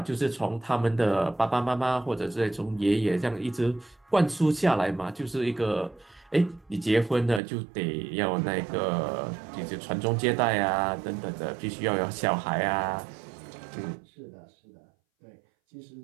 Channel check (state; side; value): drops out; left; at 7.4 s